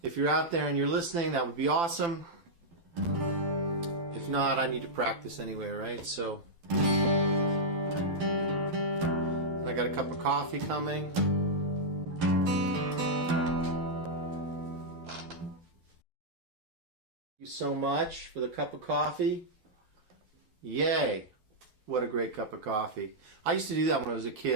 if you're out there and you're listening, that would be awesome. If not, I need to practice anyway, right? So I got a cup of coffee coming. Thank you so much for the cup of coffee. Yay. What a great cup of coffee. I used to do that when I was a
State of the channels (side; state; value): left; late; 12 ms